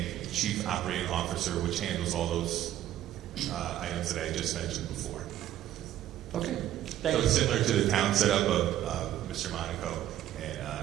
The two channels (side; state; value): left; quieter; 12.5 dB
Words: chief operating officer, which handles all those items that I just mentioned before. Okay. So it's similar to the town setup of Mr. Monaco and